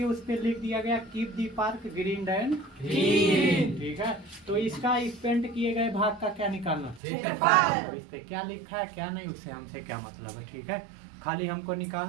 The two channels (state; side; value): drops out; left; at 7.0 s